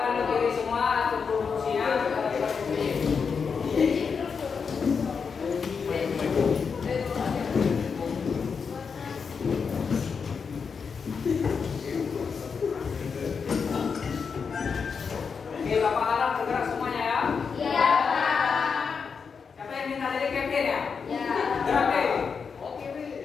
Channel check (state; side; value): quieter; right; 5.8 dB